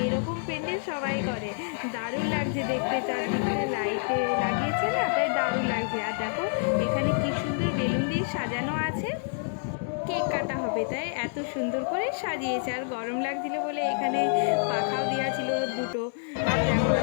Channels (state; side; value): silent; right; digital silence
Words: এরকম প্যান্ডেল সবাই করে, দারুণ লাগছে দেখতে। চারদিকটা লাইটে লাগিয়েছে না, তাই দারুণ লাগছে। আর দেখো এখানে কি সুন্দর বেলুন দিয়ে সাজানো আছে, কেক কাটা হবে তাই এত সুন্দর করে সাজিয়েছে। আর গরম লাগছিল বলে এখানে পাখাও দেওয়া ছিল দুটো। আর দেখো